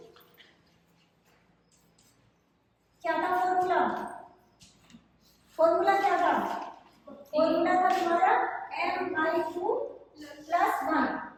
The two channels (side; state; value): both; identical; correlation 1.00